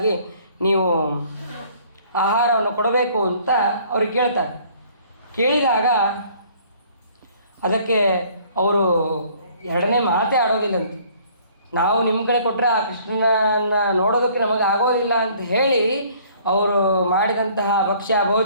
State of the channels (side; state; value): both; inverted; correlation -0.57